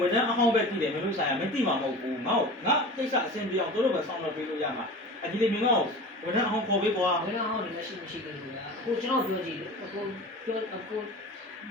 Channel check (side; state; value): both; normal; correlation 0.35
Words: န်ထမ်းအဟောင်းပဲတည်တယ်မင်းတို့ဆိုင်ကမသိမှာမဟုတ်ဘူးငါကိစ္စအဆင်ပြေအောင်တို့ပဲဆောင်းတော့ပေးလို့ရမှာဒီလေမင်းကဝန်ထမ်းအဟောင်းခေါ်ပေးကွာ ဝန်ထမ်းဟောင်းလည်းမရှိဘူးကွာကိုကျွန်တော်ပြောကြည့်ကို